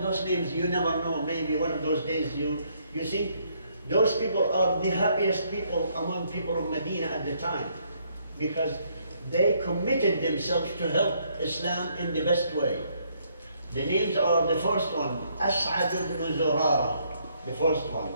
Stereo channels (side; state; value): both; inverted; correlation -0.70